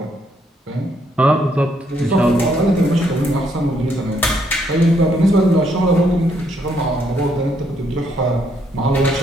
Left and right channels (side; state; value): both; normal; correlation 0.72